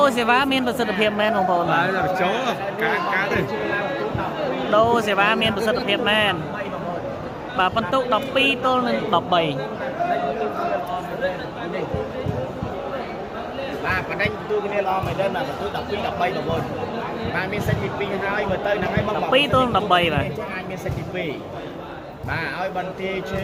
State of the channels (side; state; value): both; identical; correlation 1.00